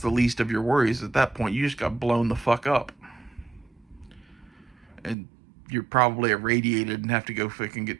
the least of your worries at that point. You just got blown the fuck up. And you're probably irradiated and have to go fucking get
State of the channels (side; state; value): left; drops out; at 5.2 s